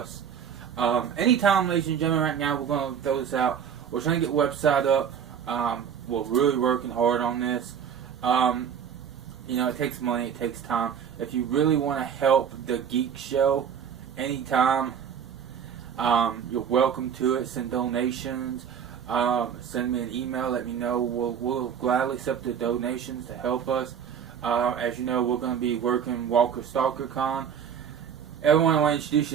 Anytime, ladies and gentlemen, right now, we're going to throw this out. We're trying to get a website up. We're really working hard on this. It takes money, it takes time. If you really want to help the Geek Show anytime, you're welcome to it. Send donations. Send me an email. Let me know. We'll gladly accept the donations to help us. As you know, we're going to be working Walker Stalker Con. Everyone, I want to introduce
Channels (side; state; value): left; quieter; 8.0 dB